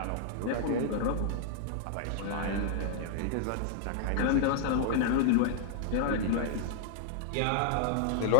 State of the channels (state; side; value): different; both; correlation -0.01